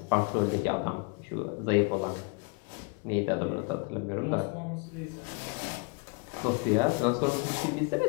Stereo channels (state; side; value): quieter; right; 34.5 dB